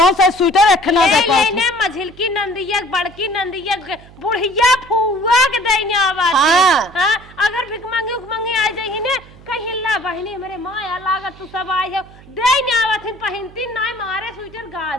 से स्वेटर रखना दे पास लेने मझिलकी नंदिया बड़की नंदिया बुढ़िया फुआ के देने आवा हाँ। हां अगर भिख मांगे आ जाई ने कहीं ला बहनी हमरे माया लागत तू सब आई है देने आवथिन पहनती नहीं मारे स्वेटर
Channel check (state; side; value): noise; right; hum, 22 dB below the sound